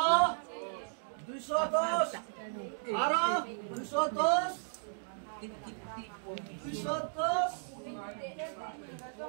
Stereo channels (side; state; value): left; silent; digital silence